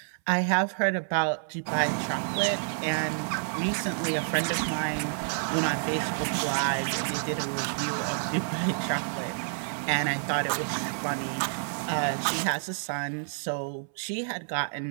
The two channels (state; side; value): silent; left; 59 dB below the other